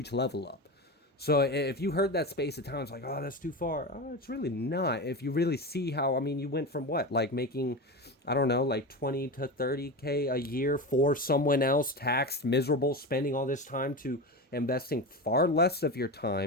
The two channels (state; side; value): normal; both; correlation 0.23